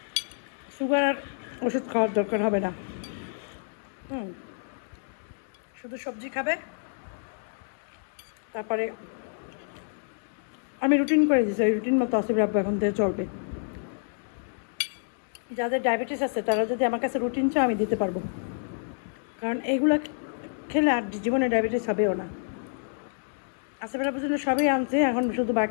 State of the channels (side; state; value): right; silent; digital silence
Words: সুগার আর ওষুধ খাওয়ার দরকার হবে না। শুধু সবজি খাবে। তারপরে আমি রুটিন করে দিয়েছি, ওই রুটিন মতো আসিফ আব্বু এখন থেকে চলবে। যাদের ডায়াবেটিস আছে তারা যদি আমার কাছে রুটিন চায়, আমি দিতে পারবো, কারণ এইগুলো খেলে আর জীবনে ডায়াবেটিস হবেও না। আসিফ আব্বুর জন্য সবই আনছে, এখন শুধু